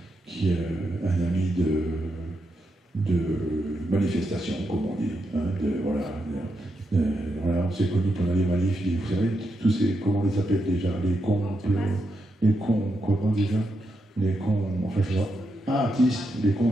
un ami de manifestation, comme on dit. Hein, voilà, on s'est connus pendant les manifs, vous savez, tous ces, comment on les appelle déjà, les cons, comment déjà les cons, enfin je vois, artistes,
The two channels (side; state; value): both; normal; correlation 0.84